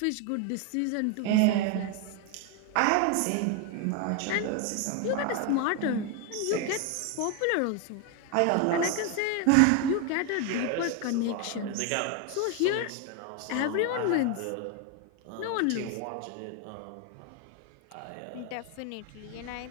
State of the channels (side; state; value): both; different; correlation 0.01